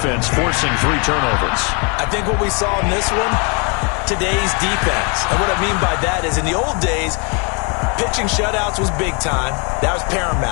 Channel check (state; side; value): quieter; right; 34.0 dB